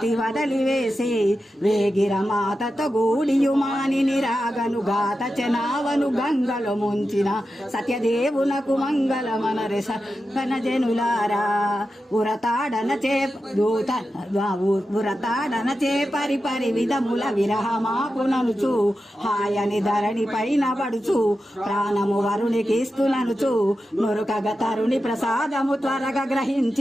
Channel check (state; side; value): normal; both; correlation 0.91